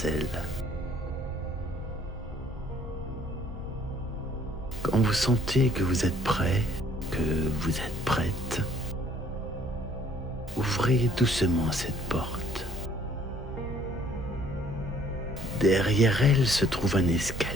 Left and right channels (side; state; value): both; normal; correlation 0.60